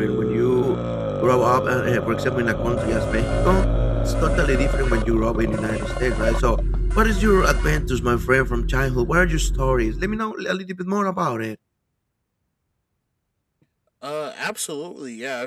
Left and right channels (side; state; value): both; identical; correlation 1.00